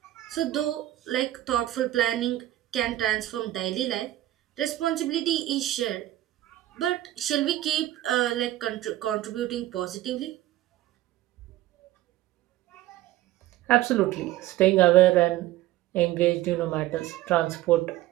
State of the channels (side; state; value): left; quieter; 14.9 dB